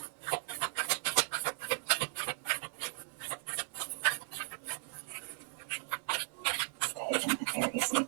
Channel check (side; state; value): left; silent; 53 dB below the other